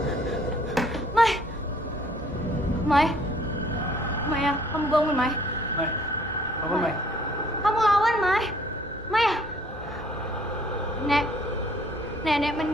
Mai, Maya, kamu bangun, Mai. Mai, bangun Mai. Kamu lawan, Mai. Maya. Nenek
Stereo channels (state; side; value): normal; both; correlation 0.60